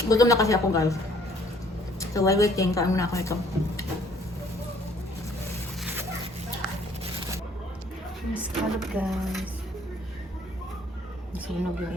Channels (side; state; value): both; normal; correlation 0.60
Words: Gutom na kasi ako, guys. So, while waiting, kain muna ako ito. Scallop, guys. Sunog yung